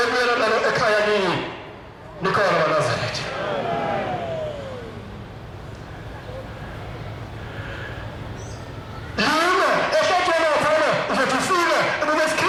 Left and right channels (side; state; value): both; identical; correlation 1.00